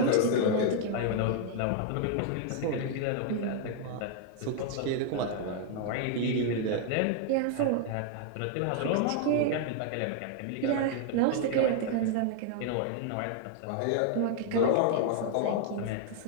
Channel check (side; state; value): both; different; correlation 0.00